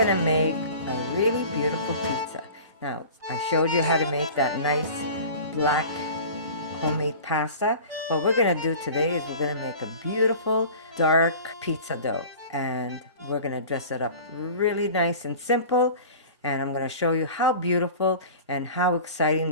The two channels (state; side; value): inverted; both; correlation -0.40